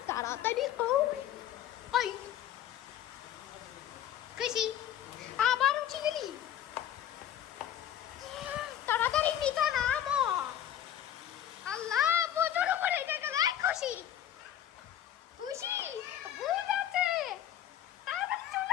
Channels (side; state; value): right; quieter; 11.0 dB